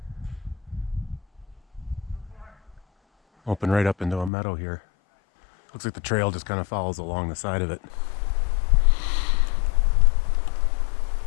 Open right up into a meadow here. Looks like the trail just kind of follows along the side of it.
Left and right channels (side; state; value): right; drops out; at 4.3 s